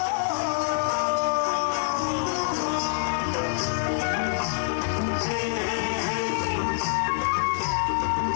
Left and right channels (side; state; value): right; silent; 61 dB below the other